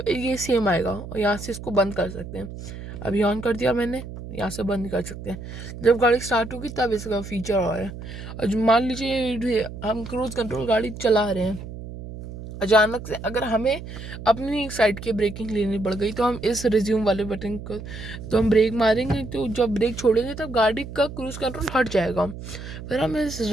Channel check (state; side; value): noise; right; hum, 11 dB below the sound